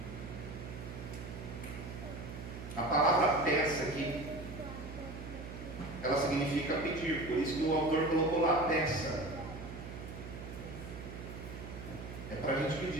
A palavra peça aqui, ela significa pedir, por isso que o autor colocou lá peça. É para a gente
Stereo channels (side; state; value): right; noise; hum, 10 dB below the sound